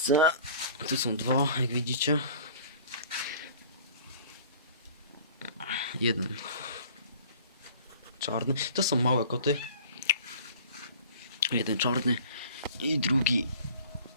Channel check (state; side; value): inverted; both; correlation -0.46